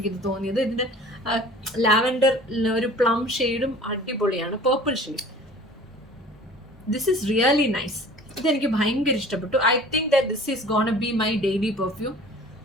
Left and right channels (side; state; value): both; normal; correlation 0.46